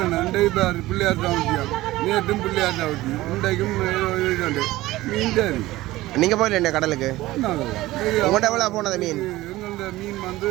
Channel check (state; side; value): quieter; left; 17.5 dB